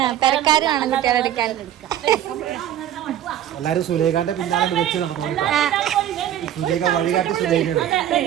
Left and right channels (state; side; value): quieter; left; 11.3 dB